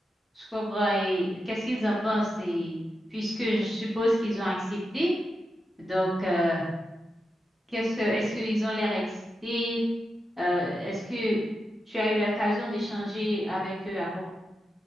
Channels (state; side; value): normal; both; correlation 0.88